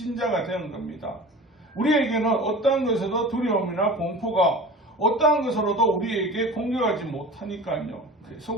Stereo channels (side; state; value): both; normal; correlation 0.38